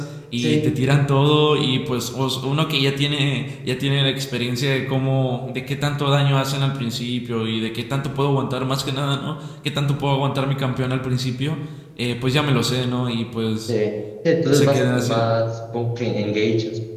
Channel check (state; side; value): identical; both; correlation 1.00